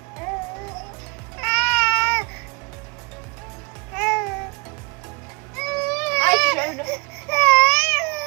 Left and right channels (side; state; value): left; quieter; 29.9 dB